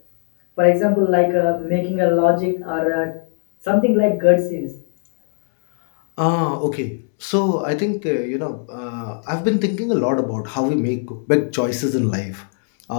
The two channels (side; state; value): right; silent; digital silence